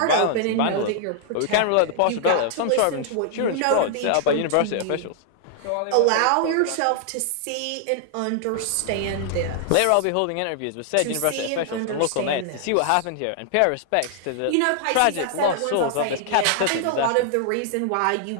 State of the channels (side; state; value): both; different; correlation 0.00